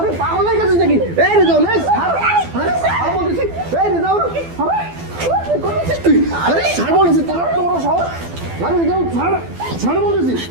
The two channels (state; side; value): late; left; 12 ms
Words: পাগল হয়ে গেছিস নাকি? এই রিজাল এই ছাড়, আরে ছাড় বলতেছি। এই রিজাল আরে কি করতেছিস তুই? আরে ছাড় বলতেছি, তোর এত বড় সাহস। আরে রিজাল ছাড় বলতেছি,